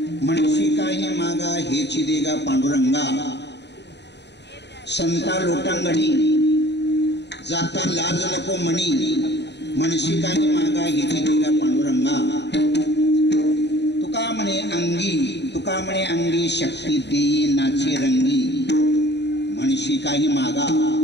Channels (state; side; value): late; right; 0.50 ms